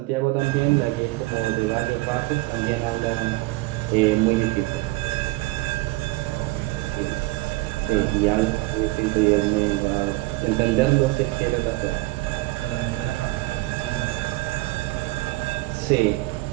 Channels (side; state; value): left; quieter; 20.7 dB